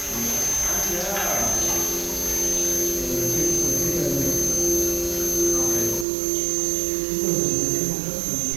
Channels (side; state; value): left; drops out; at 6.1 s